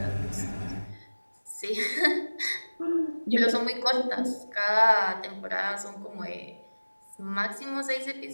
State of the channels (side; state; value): both; inverted; correlation -1.00